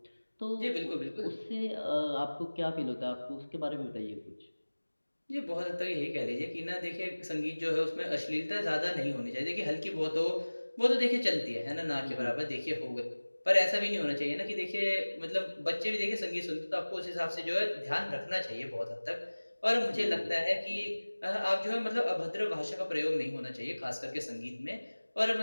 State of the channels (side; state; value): both; inverted; correlation -1.00